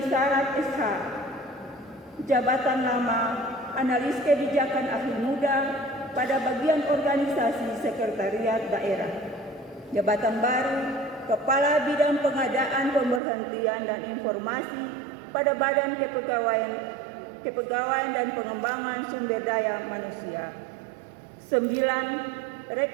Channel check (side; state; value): left; drops out; at 13.2 s